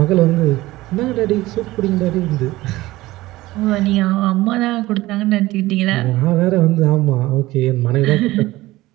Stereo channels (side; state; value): left; quieter; 18.1 dB